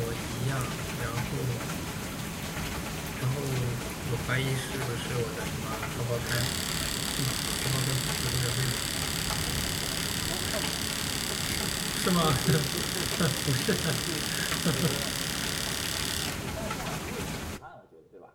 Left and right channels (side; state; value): both; identical; correlation 1.00